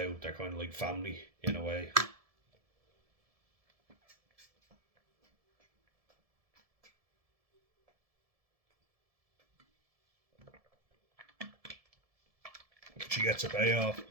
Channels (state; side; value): late; left; 1.7 ms